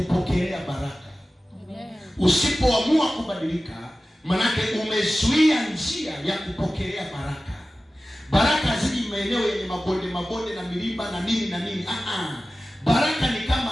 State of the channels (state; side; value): normal; both; correlation 0.96